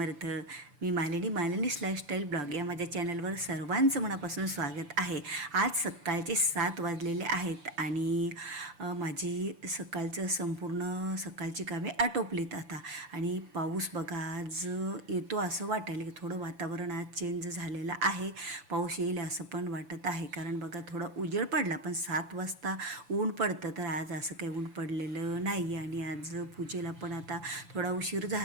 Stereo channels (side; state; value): left; late; 6.9 ms